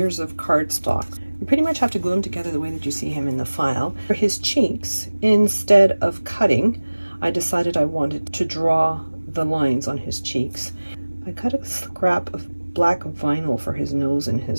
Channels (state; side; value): inverted; both; correlation -1.00